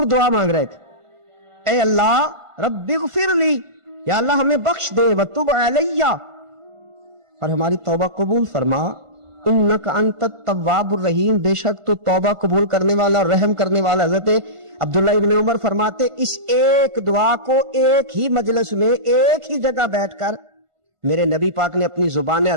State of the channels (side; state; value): left; late; 1.5 ms